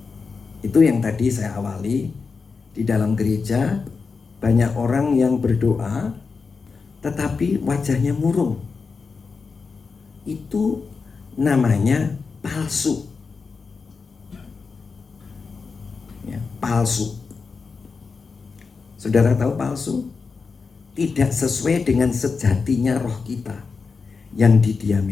Itu yang tadi saya awali, di dalam gereja banyak orang yang berdoa tetapi wajahnya murung. Itu namanya palsu. Ya, palsu. Saudara tahu palsu? Tidak sesuai dengan sejatinya roh kita yang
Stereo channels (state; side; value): quieter; right; 4.8 dB